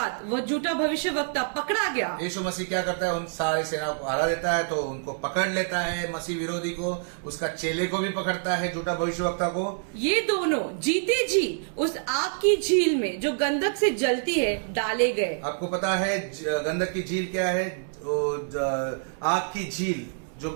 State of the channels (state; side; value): silent; left; digital silence